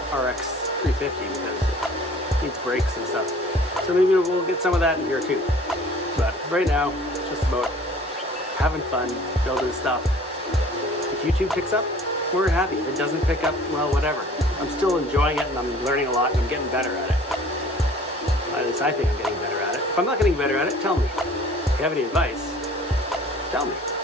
RX 350, because it needs brakes and stuff. So maybe we'll get some of that in here too. But right now, it's just about having fun, building stuff. If YouTube picks up, we're happy. If it doesn't pick up, well, whatever. I'm still enjoying it and I'm learning a lot and I'm getting better at it. At least I think I'm getting better at it. If I'm not getting better at it, tell me. If you have any advice, tell me.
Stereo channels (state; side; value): normal; both; correlation 0.50